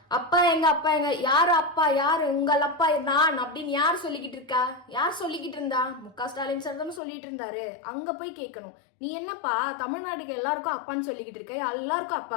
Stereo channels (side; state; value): right; drops out; at 7.0 s